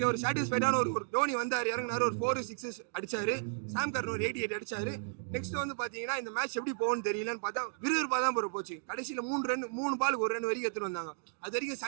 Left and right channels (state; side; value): silent; left; digital silence